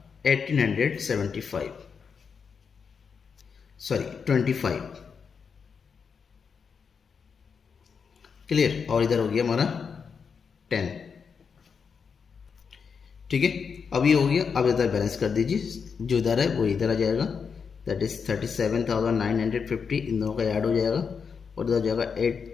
1875, सॉरी 25। क्लियर, और इधर हो गया हमारा 10। ठीक है, अब ये हो गया। अब इधर बैलेंस कर दीजिए, जो इधर है वो इधर आ जाएगा, दैट इज 37,950, इन दोनों का ऐड हो जाएगा और इधर हो जाएगा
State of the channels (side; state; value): right; quieter; 6.0 dB